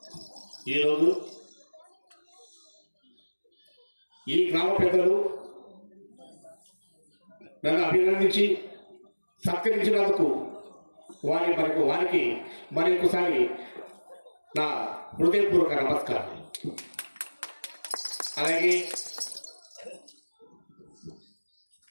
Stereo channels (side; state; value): both; inverted; correlation -1.00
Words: ఈరోజు ఈ గ్రామ పెద్దలు నన్ను అభినందించి సత్కరించినందుకు వారికి మరొకసారి నా హృదయపూర్వక నమస్కారం. అలాగే